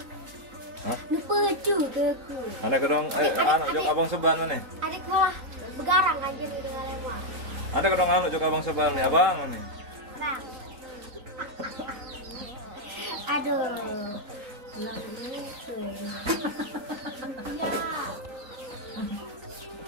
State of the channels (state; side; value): late; left; 3.9 ms